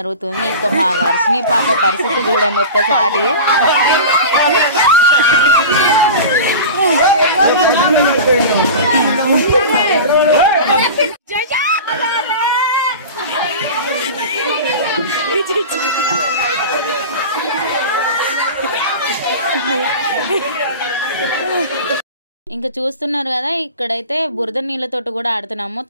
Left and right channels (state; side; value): inverted; both; correlation -0.32